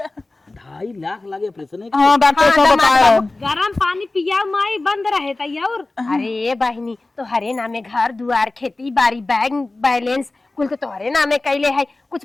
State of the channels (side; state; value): right; quieter; 3.1 dB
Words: 2.5 लाख लागे ऑपरेशन। हाँ डॉक्टर साहब बताया। गरम पानी पिया माई बंद रहे तैयार। अरे बहिनी तोहरे नामे घर दुआर खेती बाड़ी बैंक बैलेंस कुल तो तोहरे नामे कैले है, कुछ